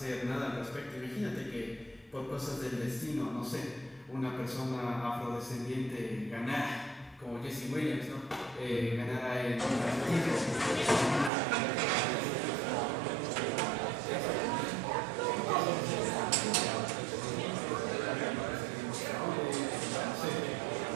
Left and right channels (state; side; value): drops out; left; at 11.3 s